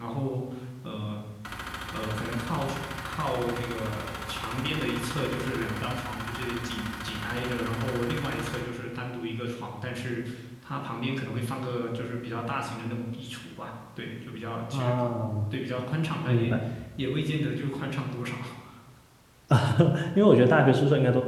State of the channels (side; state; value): both; identical; correlation 1.00